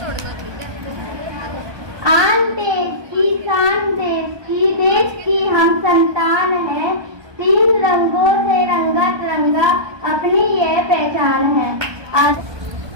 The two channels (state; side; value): late; left; 1.2 ms